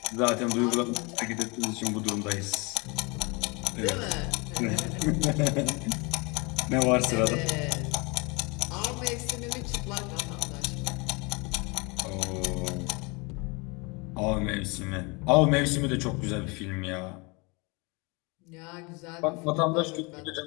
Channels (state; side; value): quieter; right; 28.6 dB